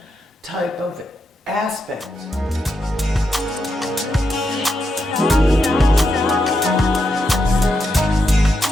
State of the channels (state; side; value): normal; both; correlation 0.84